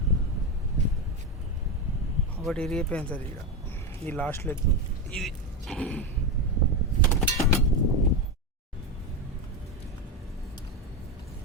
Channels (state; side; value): normal; both; correlation 0.13